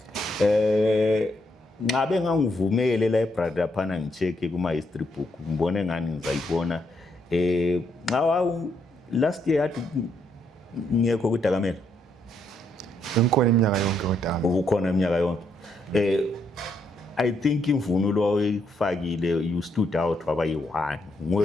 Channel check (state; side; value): normal; both; correlation 0.75